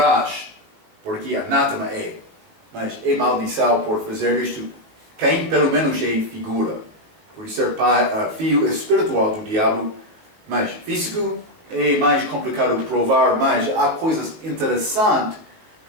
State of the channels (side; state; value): left; late; 19 ms